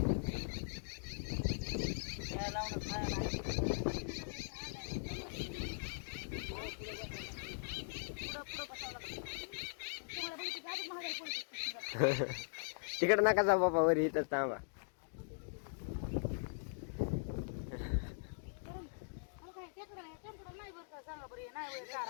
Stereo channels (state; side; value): silent; right; digital silence